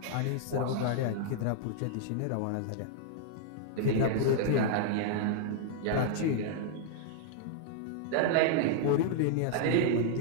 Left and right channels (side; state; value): both; different; correlation -0.01